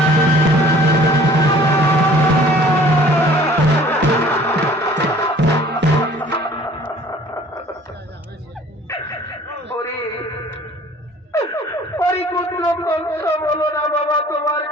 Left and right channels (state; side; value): normal; both; correlation 0.52